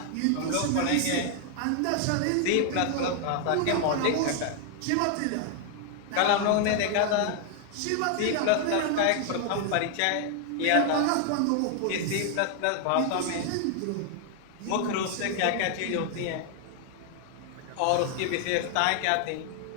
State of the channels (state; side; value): different; both; correlation 0.00